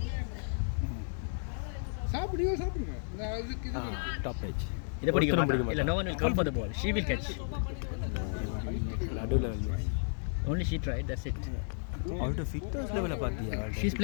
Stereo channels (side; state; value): right; silent; digital silence